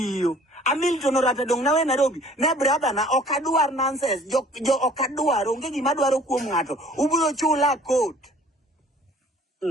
Hamilton orata dong nawe Nairobi ne brother na okadwar nonsense jo okadwar onge gima dwaro kuom ngato ubiro chula court.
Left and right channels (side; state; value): both; normal; correlation 0.53